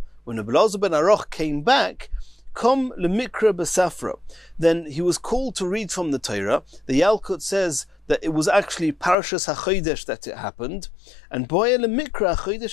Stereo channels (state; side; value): drops out; right; at 9.2 s